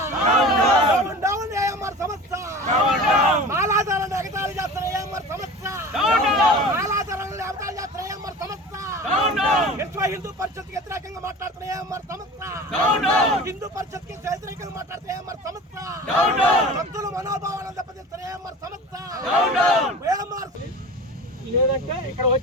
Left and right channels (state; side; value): normal; both; correlation 0.36